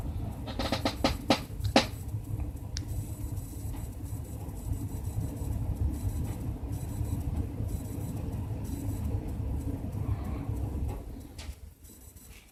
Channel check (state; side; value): identical; both; correlation 1.00